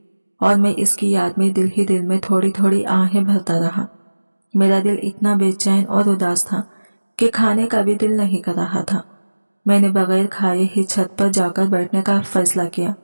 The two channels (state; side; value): inverted; both; correlation -1.00